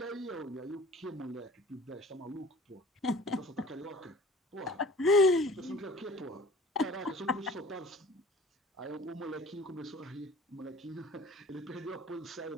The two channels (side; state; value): both; normal; correlation 0.46